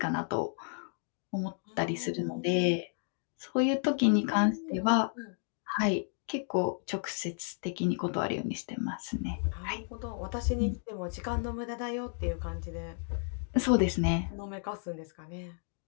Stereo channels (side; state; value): right; silent; 56 dB below the other